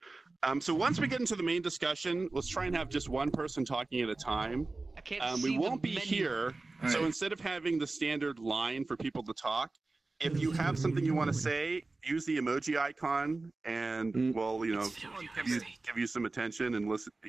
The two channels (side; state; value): left; quieter; 3.4 dB